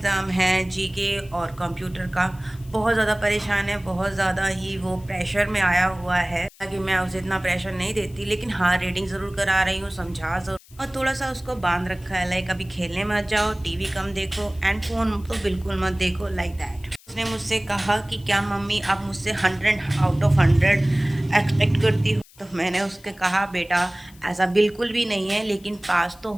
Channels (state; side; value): noise; left; hiss, 25 dB below the sound